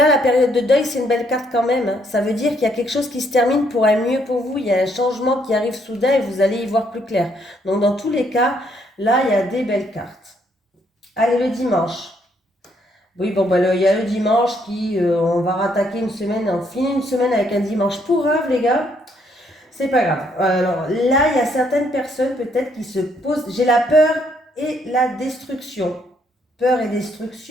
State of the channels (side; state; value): both; normal; correlation 0.70